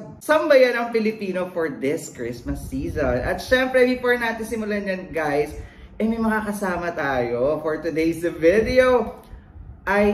sambayan ng Pilipino for this Christmas season. At syempre, before natin simulan yan guys, may mga kasama tayo for today's video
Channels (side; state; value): both; identical; correlation 1.00